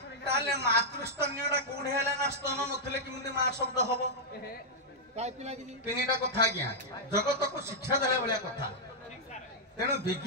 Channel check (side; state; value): both; normal; correlation -0.07